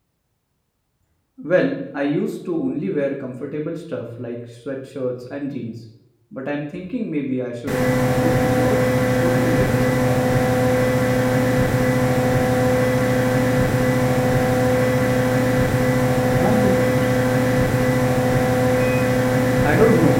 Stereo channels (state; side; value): identical; both; correlation 1.00